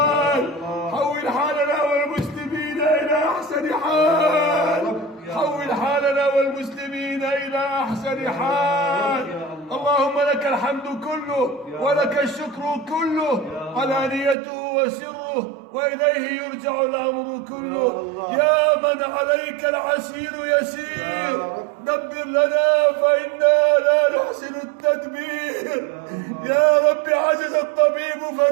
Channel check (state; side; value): drops out; left; at 14.4 s